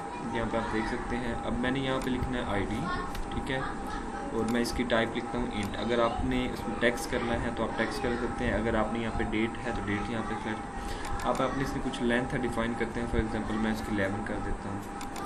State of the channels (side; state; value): both; identical; correlation 1.00